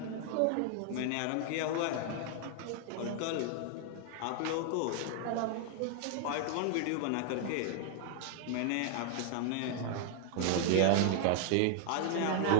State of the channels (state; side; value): different; both; correlation 0.00